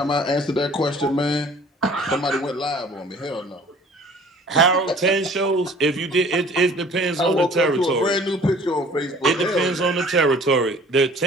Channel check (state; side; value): normal; both; correlation 0.50